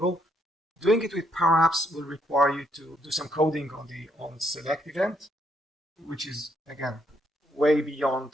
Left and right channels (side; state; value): both; normal; correlation 0.73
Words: doing it with Power Apps will require you to do some coding on the onSelect event, which is, again, way